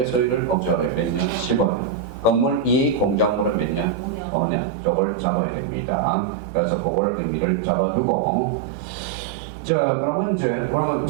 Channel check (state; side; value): drops out; left; at 4.2 s